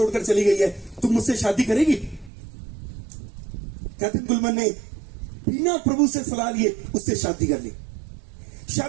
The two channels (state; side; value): drops out; left; at 2.3 s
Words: चली गई है, तुम मुझसे शादी करेगी? कैथरीन कुलमन ने बिना प्रभु से सलाह लिए उससे शादी कर ली।